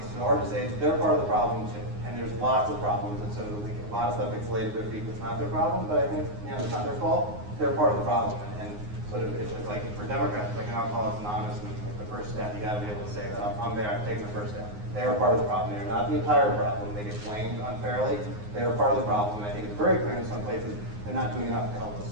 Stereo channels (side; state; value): left; late; 9.6 ms